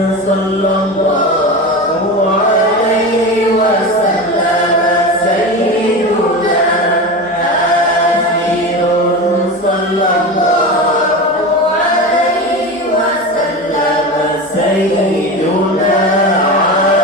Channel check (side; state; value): both; normal; correlation 0.25